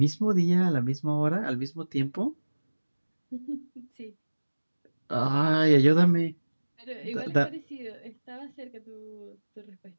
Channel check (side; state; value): both; inverted; correlation -1.00